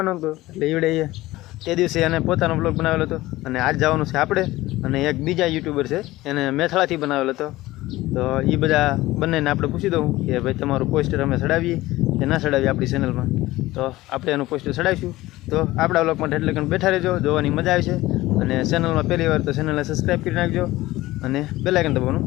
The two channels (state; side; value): quieter; right; 17.8 dB